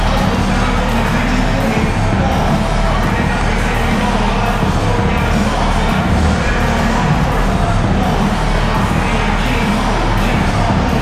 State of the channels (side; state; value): both; identical; correlation 1.00